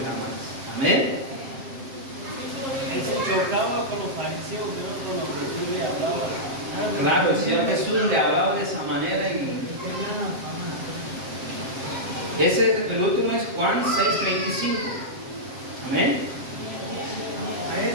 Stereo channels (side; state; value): left; late; 7.5 ms